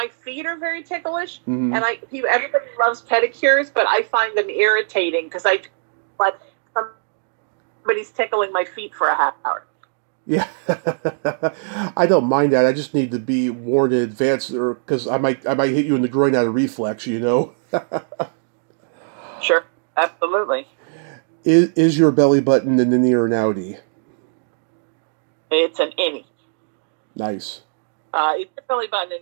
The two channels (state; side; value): silent; left; digital silence